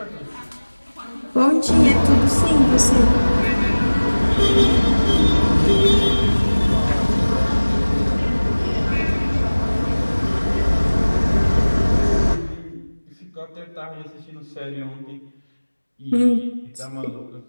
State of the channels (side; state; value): both; inverted; correlation -1.00